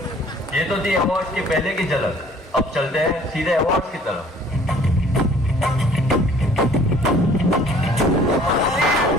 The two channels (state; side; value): normal; both; correlation 0.54